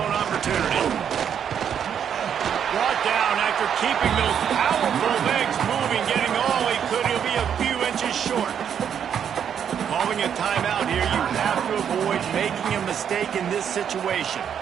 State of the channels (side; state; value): left; quieter; 8.3 dB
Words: opportunity. Brought down after keeping those powerful legs moving, getting all he could. He'll be a few inches short. Calling a timeout here, you have to avoid making a mistake in this situation.